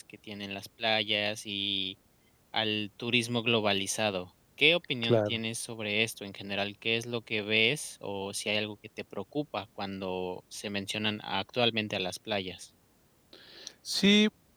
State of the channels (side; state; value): both; identical; correlation 1.00